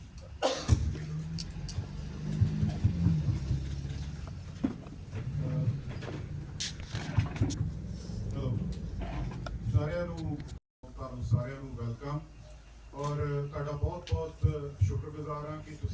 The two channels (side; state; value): both; identical; correlation 1.00